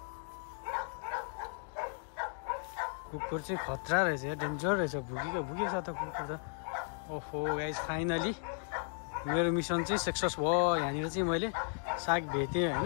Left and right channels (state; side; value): silent; right; 54 dB below the other